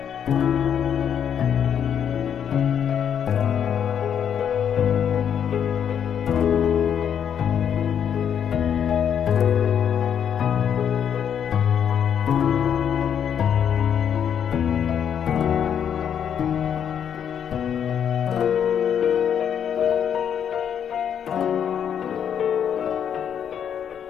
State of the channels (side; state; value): right; quieter; 8.5 dB